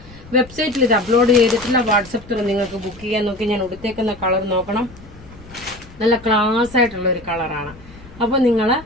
വെബ്സൈറ്റിൽ ഇത് അപ്ലോഡ് ചെയ്തിട്ടില്ല. വാട്സപ്പ് ത്രൂ നിങ്ങൾക്ക് ബുക്ക് ചെയ്യാൻ. നോക്കി, ഞാൻ ഉടുത്തേക്കുന്ന കളർ നോക്കണം, നല്ല ക്ലാസ് ആയിട്ടുള്ള ഒരു കളറാണ്. അപ്പോൾ നിങ്ങൾ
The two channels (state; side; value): noise; left; rumble, 20 dB below the sound